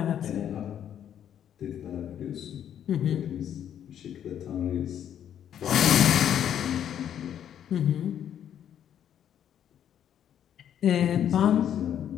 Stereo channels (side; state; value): right; quieter; 9.8 dB